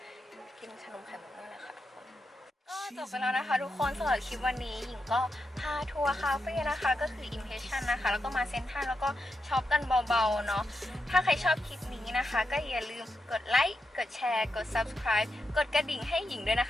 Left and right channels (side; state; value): both; normal; correlation 0.86